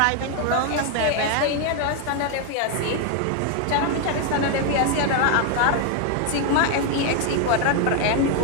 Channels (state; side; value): different; both; correlation 0.01